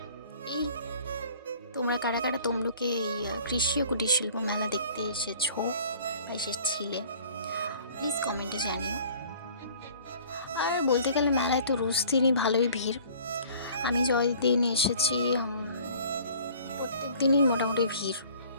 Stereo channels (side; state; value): both; inverted; correlation -0.51